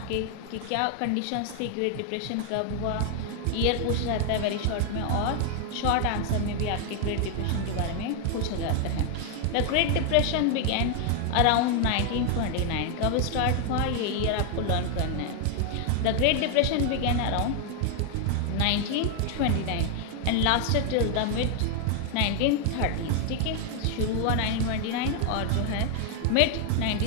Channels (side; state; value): both; different; correlation 0.00